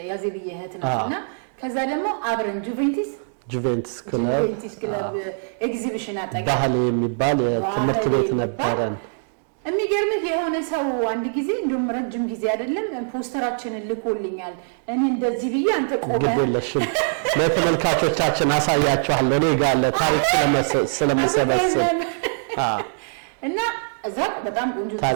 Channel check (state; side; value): silent; left; digital silence